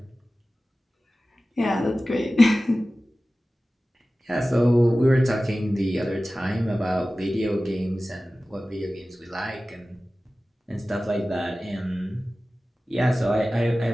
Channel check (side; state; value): both; normal; correlation 0.96